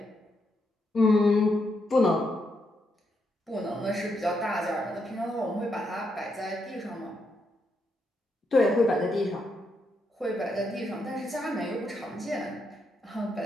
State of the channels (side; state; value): both; normal; correlation 0.80